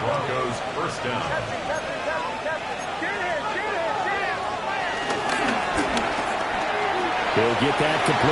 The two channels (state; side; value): identical; both; correlation 1.00